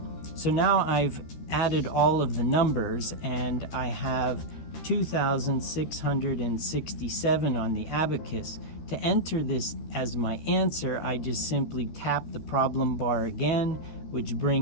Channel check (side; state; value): right; late; 13 ms